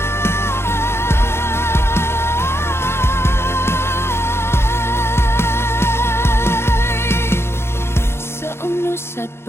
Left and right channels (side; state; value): right; late; 0.12 ms